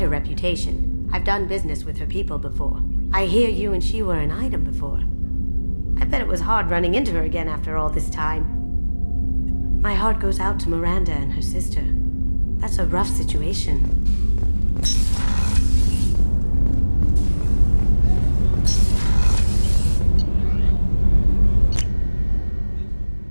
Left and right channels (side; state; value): both; inverted; correlation -1.00